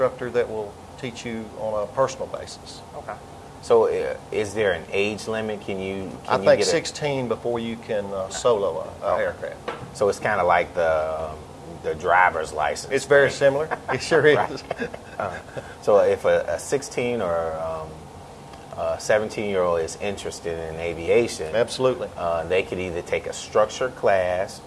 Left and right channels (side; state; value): both; identical; correlation 1.00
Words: that will teach you on a personal basis. Okay. So is there an age limit? I think 16 before you can solo an aircraft. So it's kind of like the driver's license. It's very similar. It sure is. So if a 16 or 17-year-old is interested in aviation, absolutely, they could either take a structured class